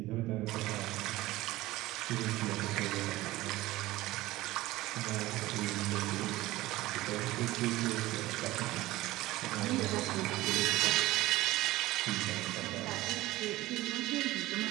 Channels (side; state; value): left; quieter; 17.8 dB